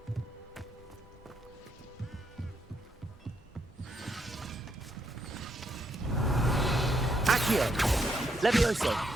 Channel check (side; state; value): both; normal; correlation 0.77